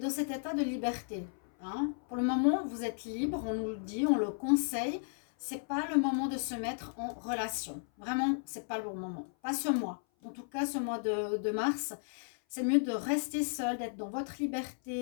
cet état de liberté. Hein. Pour le moment, vous êtes libre, on nous le dit, on le conseille. C'est pas le moment de se mettre en relation. Vraiment, c'est pas le bon moment. Pas ce mois. En tout cas, ce mois de mars, c'est mieux de rester seul, d'être dans votre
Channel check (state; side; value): silent; right; 55 dB below the other